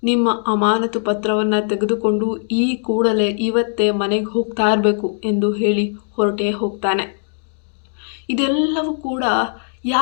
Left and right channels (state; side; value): silent; right; 66 dB below the other